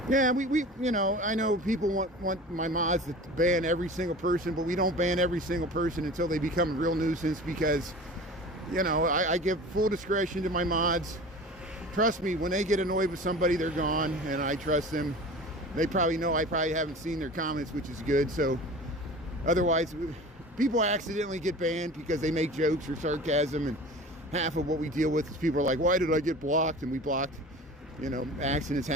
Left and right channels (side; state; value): both; normal; correlation 0.38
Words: Yeah, we you know, I know people want my mods to ban every single person, but we don't ban every single person until they become a real nuisance, because, you know, I give full discretion to my mods. Trust me, when they get annoyed with somebody, they're gone, and I trust them. They probably know I probably haven't seen their comments, which is good. So otherwise, people accidentally get banned because they make jokes or sarcasm, and half of what we deal with is people are like, why did I get blocked? And we blocked, you know, accidents